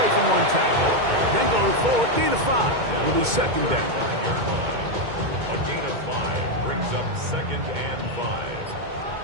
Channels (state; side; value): late; left; 2.2 ms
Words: from one tackle. Then going forward, gain of 5. Will be second down. A gain of 5 brings up second and 5.